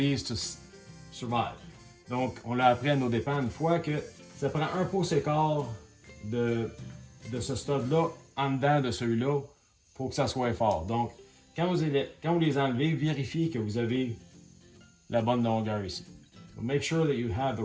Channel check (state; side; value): identical; both; correlation 1.00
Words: to survive. Donc, on l'a appris à nos dépens une fois que ça prend 1 pouce et quart de ce stud-là en dedans de celui-là pour que ça soit fort. Donc, quand vous les enlevez, vérifiez que vous avez la bonne longueur ici. So make sure that you have the